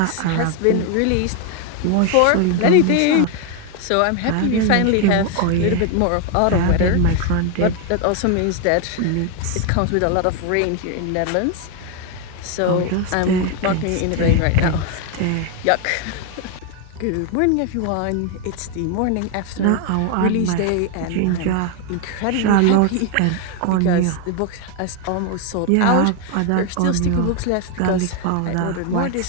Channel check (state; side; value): different; both; correlation 0.01